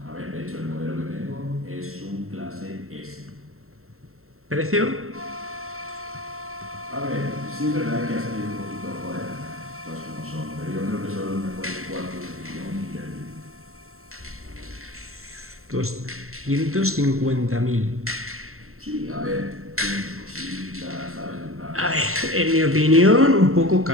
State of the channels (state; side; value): late; left; 0.63 ms